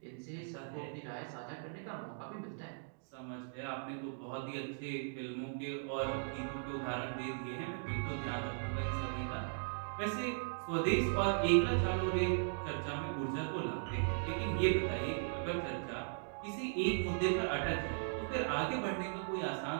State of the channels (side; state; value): left; silent; digital silence